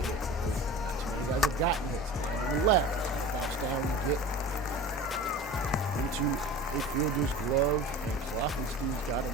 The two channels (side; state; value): both; normal; correlation 0.37